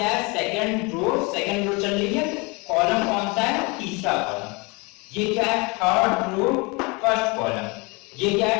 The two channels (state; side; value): quieter; right; 27.9 dB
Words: है, सेकंड रो चल रही है, कॉलम कौन सा है, तीसरा कॉलम। ये क्या है, थर्ड रो फर्स्ट कॉलम। ये क्या